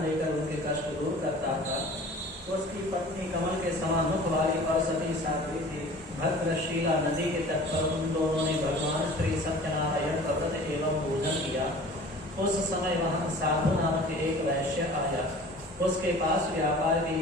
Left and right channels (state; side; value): normal; both; correlation 0.44